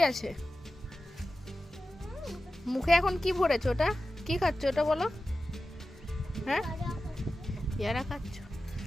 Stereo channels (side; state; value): both; normal; correlation 0.93